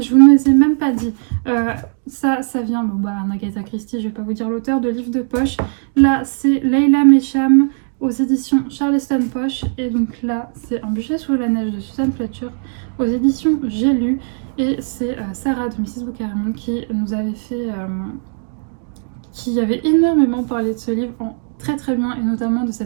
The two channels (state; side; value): silent; left; 67 dB below the other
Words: Je vous ne les ai même pas dit. Ça vient, Agatha Christie, je vais pas vous dire l'auteur, de livres de poche. Là, c'est Leila Mesham aux éditions Charleston Poche. Et donc là, c'est Un bûcher sous la neige de Susan Fletcher aux éditions J'ai lu. Et c'est Sarah de Mrs. Bookerman qui nous avait fait... qui avait énormément parlé de ce livre très bien, et notamment de